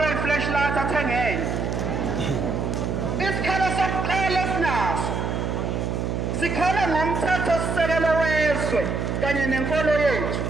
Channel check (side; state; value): right; noise; hum, 1 dB below the sound